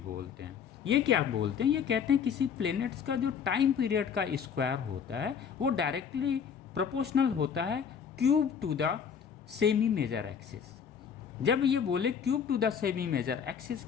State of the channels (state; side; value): quieter; right; 7.2 dB